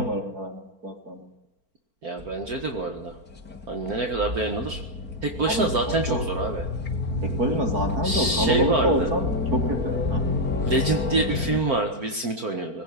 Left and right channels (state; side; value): late; left; 4.4 ms